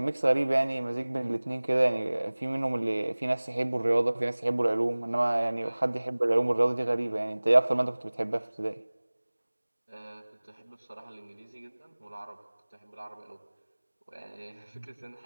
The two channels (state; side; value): inverted; both; correlation -1.00